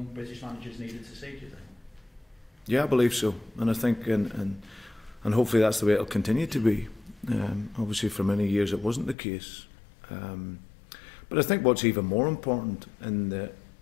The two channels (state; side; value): drops out; right; at 9.2 s